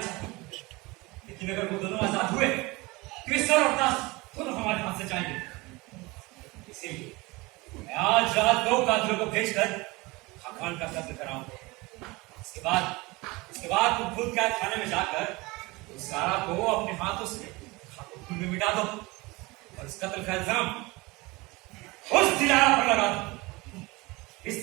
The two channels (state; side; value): quieter; left; 23.3 dB